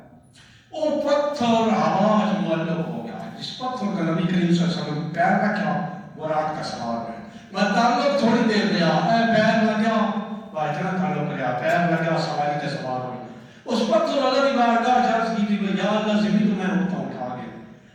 وہ پتھر آواز معلق ہو گیا جس پتھر کا نبی کریم صلی اللہ علیہ وسلم پیر رکھا براق کا سوار ہے میں تعلق تھوڑی دیر لیا پیر لگیا اتنا تعلق لیا پیر لگیا سواری کے سوار ہوئی اس پتھر اللہ کی بارگاہ عرض کی تھی یا اللہ زمین تو میں ہوتا اٹھا گیا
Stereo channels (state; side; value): identical; both; correlation 1.00